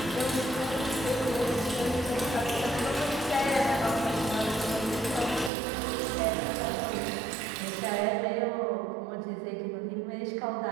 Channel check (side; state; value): left; drops out; at 5.5 s